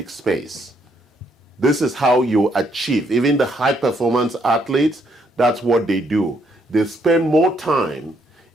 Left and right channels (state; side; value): normal; both; correlation 0.72